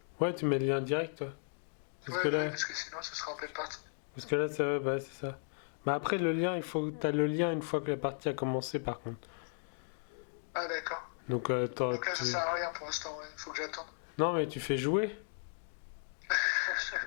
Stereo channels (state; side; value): silent; right; digital silence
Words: Ouais, tu mets le lien direct, toi. Parce que Ouais, ouais, là, parce que sinon, ce sera en pleine partie. ça, bah, c'est ça. Mais après, le lien, il faut, t'as le lien une fois que la partie a commencé, par contre. Ah, d'accord. Donc, Donc là, ça sert à rien pour l'instant, ouais. Faut que j'attende. non, mais tu fais jouer.